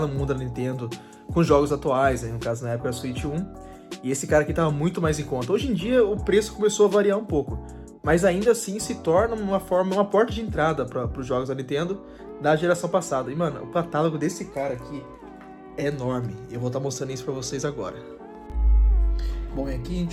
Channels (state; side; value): identical; both; correlation 1.00